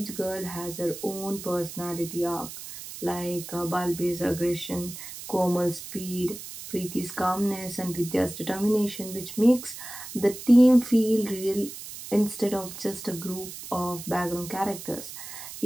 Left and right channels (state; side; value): noise; right; hiss, 11 dB below the sound